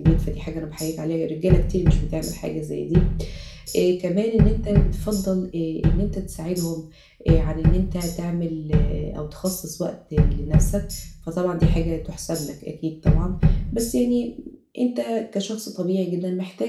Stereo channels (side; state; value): both; identical; correlation 1.00